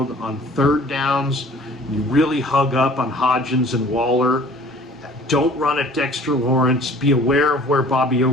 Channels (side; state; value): both; normal; correlation 0.50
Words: On 3rd downs, you really hug up on Hodgins and Waller. Don't run at Dexter Lawrence. Be aware of where Bobby